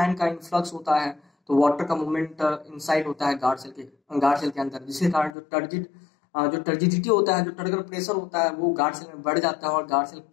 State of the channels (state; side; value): drops out; right; at 5.4 s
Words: का इनफ्लक्स होता है, तो वाटर का मूवमेंट इनसाइड होता है गार्ड सेल के अंदर, जिसके कारण जो टर्जिडिटी होता है, जो टर्गर प्रेशर होता है, वो गार्ड सेल में बढ़ जाता है और गार्ड सेल